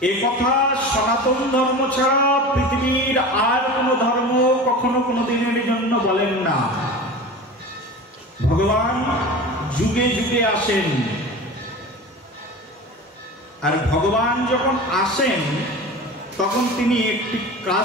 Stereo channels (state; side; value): normal; both; correlation 0.34